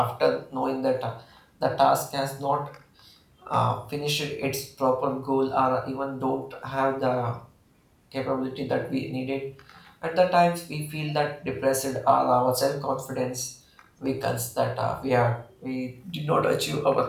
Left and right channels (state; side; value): identical; both; correlation 1.00